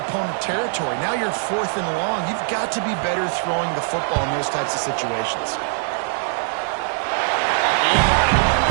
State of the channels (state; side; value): silent; left; 60 dB below the other